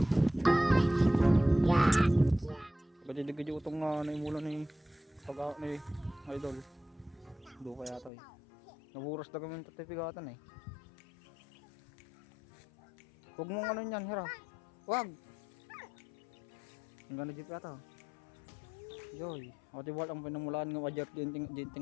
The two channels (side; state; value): right; drops out; at 8.1 s